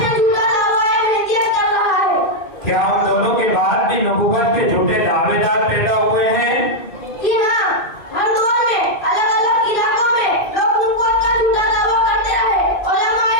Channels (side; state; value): right; late; 2.4 ms